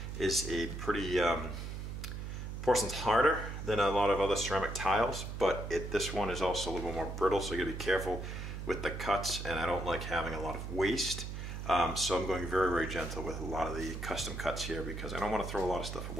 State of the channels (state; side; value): noise; right; hum, 6 dB below the sound